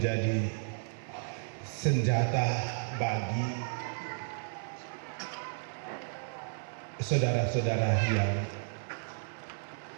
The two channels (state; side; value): silent; left; 56 dB below the other